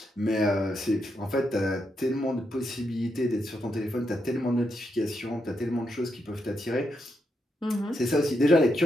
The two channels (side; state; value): both; normal; correlation 0.82